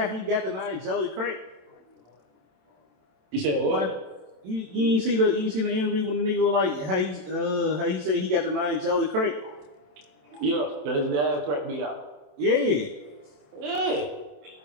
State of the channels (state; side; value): late; left; 27 ms